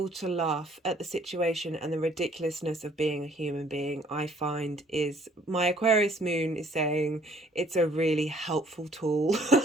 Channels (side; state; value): both; normal; correlation 0.60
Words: to laugh at the situation and the ridiculousness of being a human being, I find is, my Aquarius moon is saying it's a really helpful tool